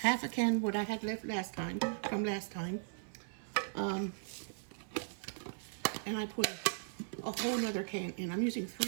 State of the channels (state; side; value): silent; left; 53 dB below the other